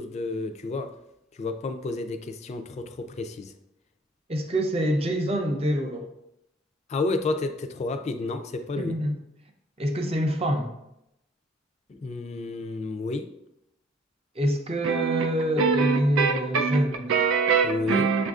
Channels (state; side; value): normal; both; correlation 0.53